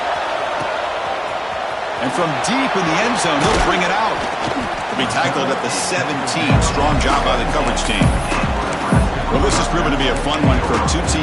And from deep in the end zone, they'll bring it out. They'll be tackled at the 17. Strong job by the coverage team. Well, this has proven to be a fun one for two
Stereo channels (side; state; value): both; identical; correlation 1.00